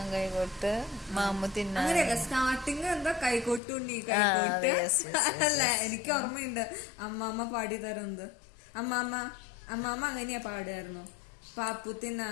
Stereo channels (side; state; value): right; drops out; at 3.6 s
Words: കൈകൊട്ട്, മാമു തിന്നാൻ. അങ്ങനെയല്ല, സ്റ്റാർട്ടിങ് എന്താ കൈകൊട്ടുണ്ണി കൈകൊട്ട് അല്ല, എനിക്ക് ഓർമ്മയുണ്ട് അമ്മാമ്മ പാടി തരുന്നത്. അമ്മാമ്മ അങ്ങനെയാ പാടുമായിരുന്നു. പാപ്പു